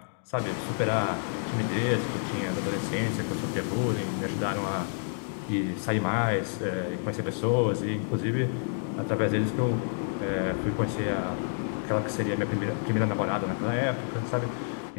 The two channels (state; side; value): silent; right; digital silence